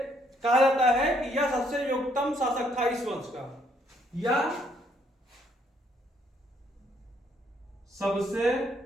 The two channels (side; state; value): both; normal; correlation 0.69